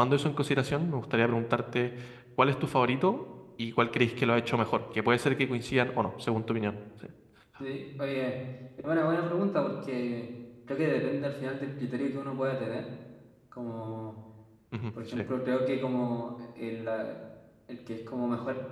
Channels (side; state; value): both; identical; correlation 1.00